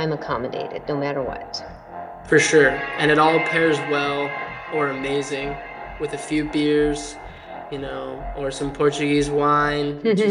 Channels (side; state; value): both; identical; correlation 1.00